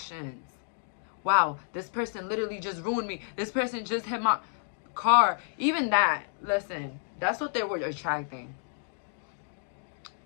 Wow, this person literally just ruined me. This person just hit my car. Even that, listen, that's what they were attracting.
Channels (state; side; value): silent; right; 58 dB below the other